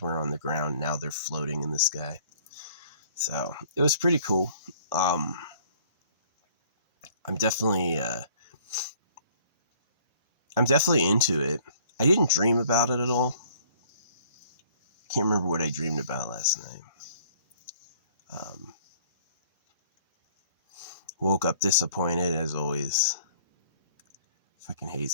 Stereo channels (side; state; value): both; inverted; correlation -0.56